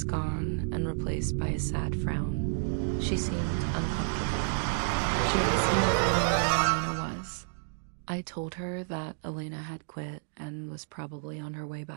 gone and replaced by a sad frown. She seemed uncomfortable. She asked me if I knew where Elena was. I told her that Elena had quit and was probably on her way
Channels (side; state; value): left; silent; digital silence